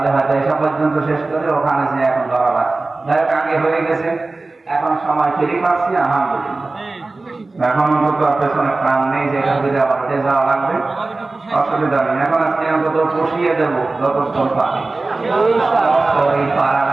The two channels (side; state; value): left; quieter; 3.4 dB